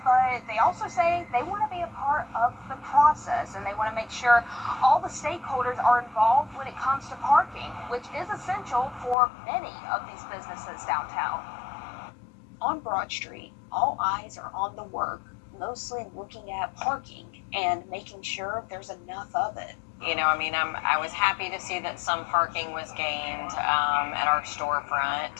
but they also say they want to be a part of the process, and they want to make sure all the stakeholders are involved when it comes to parking, which is essential for many of these businesses downtown. On Broad Street, all eyes are on the work, mostly looking at parking and making sure there's enough of it. I was happy to see that some parking was gained at our storefront,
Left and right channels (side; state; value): right; drops out; at 9.2 s